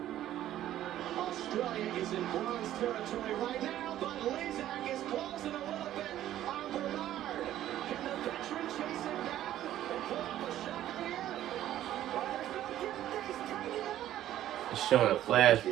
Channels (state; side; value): quieter; left; 12.7 dB